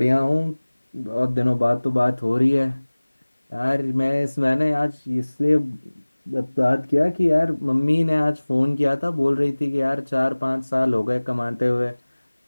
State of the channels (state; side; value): inverted; both; correlation -1.00